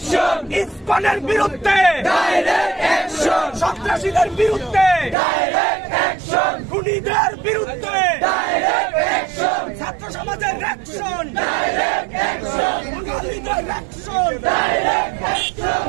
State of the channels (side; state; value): left; drops out; at 5.2 s